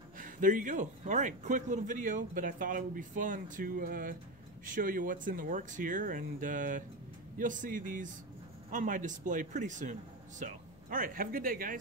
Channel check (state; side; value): noise; left; hum, 24 dB below the sound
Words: there you go. All right, quick little video, but I thought it would be fun to show you what's in the works here, and you'll see these on my display pretty soon. So, all right, have a good day,